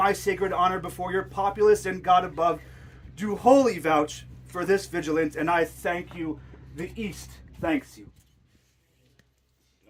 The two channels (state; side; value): identical; both; correlation 1.00